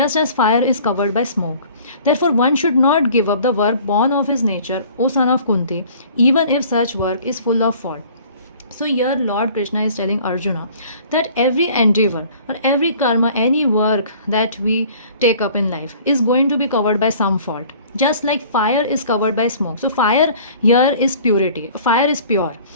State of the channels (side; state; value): both; inverted; correlation -0.50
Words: as fire is covered by smoke. Therefore, one should not give up the work born of his nature, O son of Kunti, even if such work is full of fault. So here Lord Krishna is telling Arjuna that every endeavor or every karma, any work that we take up in life is going to be covered by some fault. Just like fire is covered by smoke. So fire here is purity. Fire is pure.